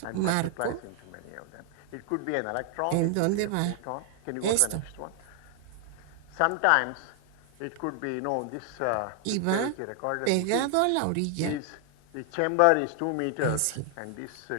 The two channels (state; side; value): different; both; correlation 0.00